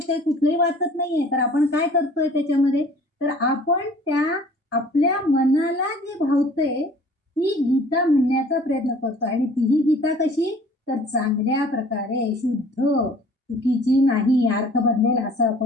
कुठलंही वाचत नाहीये. तर आपण काय करतोय त्याच्यामध्ये, तर आपण त्या आपल्या मनाला जे भावतंय ती गीता म्हणण्याचा प्रयत्न करतो. आणि तीही गीता कशी, तर चांगल्या प्रकारे शुद्ध, चुकीची नाही, अर्थ बदलेल असं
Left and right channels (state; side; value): normal; both; correlation 0.51